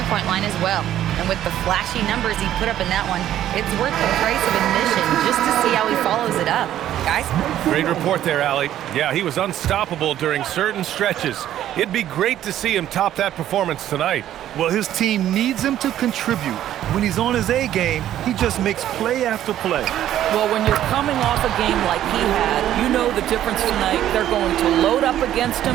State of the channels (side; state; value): left; quieter; 11.9 dB